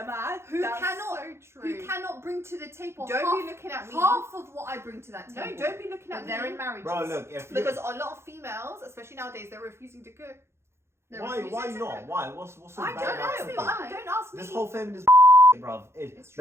who that's cannot- so true. who cannot bring to the table Don't half, be looking at me. half of what I bring to that No, table. don't be looking But at they're me. in marriages. bro, look, if you Because a lot of females, especially nowadays, they're refusing to cook. They're why refusing to not? cook. Why? What's so I bad don't about know, cooking? but Why? don't ask me. This whole feminist bruv. It's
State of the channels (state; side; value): late; left; 0.13 ms